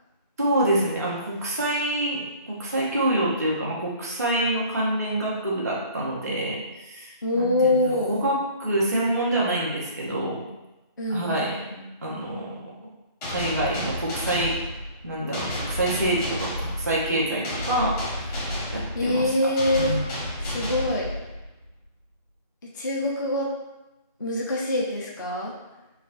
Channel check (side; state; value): both; inverted; correlation -0.49